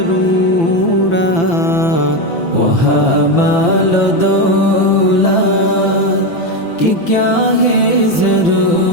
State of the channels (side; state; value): right; late; 5.9 ms